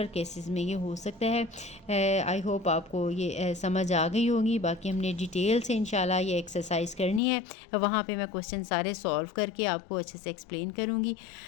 केसेस में ये हो सकता है। आई होप आपको ये समझ आ गई होगी। बाकी हमने डिटेल से इंशाल्लाह ये एक्सरसाइज करनी है, वहाँ पे मैं क्वेश्चन सारे सॉल्व करके आपको अच्छे से एक्सप्लेन करूँगी।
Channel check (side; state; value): right; drops out; at 7.2 s